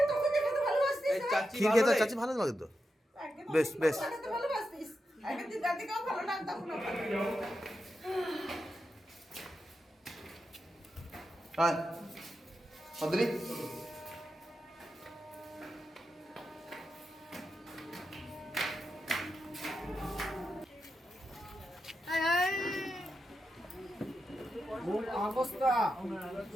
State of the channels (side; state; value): both; normal; correlation 0.88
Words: এই চাচি ক্ষীর ভালো খেতে রে? চাচ্ছি ভালো লাগে তো, বেশ বেশ। হ্যাঁ অদ্রি, মূল অবস্থা